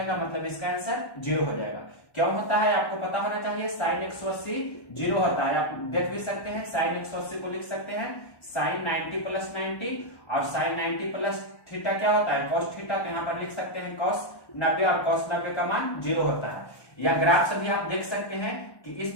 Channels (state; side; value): late; right; 1.1 ms